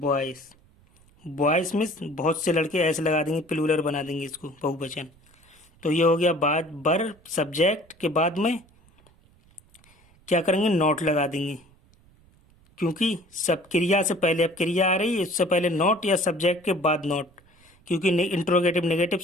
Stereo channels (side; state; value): right; noise; rumble, 30 dB below the sound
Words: बॉयज मीन्स बहुत से लड़के, ऐसे लगा देंगे प्लूरल बना देंगे इसको बहुवचन। तो ये हो गया बाज बर सब्जेक्ट के बाद में क्या करेंगे नॉट लगा देंगे, क्योंकि सब क्रिया से पहले अब क्रिया आ रही है, इससे पहले नॉट या सब्जेक्ट के बाद नॉट, क्योंकि इंट्रोगेटिव नेगेटिव